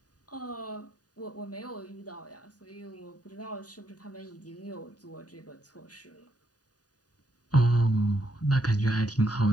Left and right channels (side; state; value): right; late; 0.68 ms